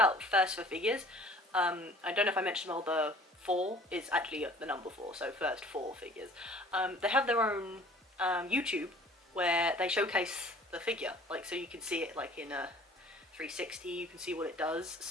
First for Figures, I don't know if I mentioned, well, the 4 is actually the number 4, so First 4 Figures. They have their own YouTube where they showcase the figure, like, so you can see it like in a 360, you can see what it does,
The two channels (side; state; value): both; normal; correlation 0.50